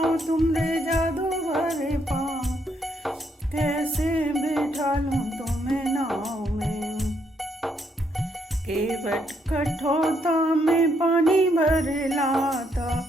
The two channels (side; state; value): both; normal; correlation 0.74